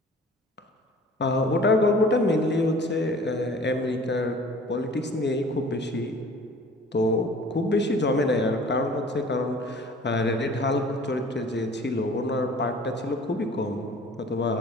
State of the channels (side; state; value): both; normal; correlation 0.48